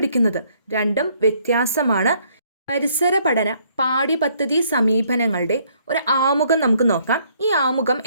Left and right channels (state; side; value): inverted; both; correlation -0.66